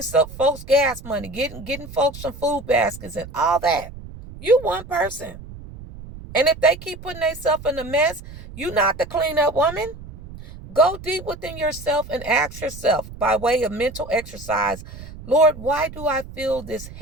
some folks gas money, getting folks some food baskets and all that. You one person. And if they keep putting themselves in a mess, you're not the cleanup woman. Go deep within yourself and ask yourself by way of mental exercise, Lord, why do I feel this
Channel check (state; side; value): noise; right; rumble, 14 dB below the sound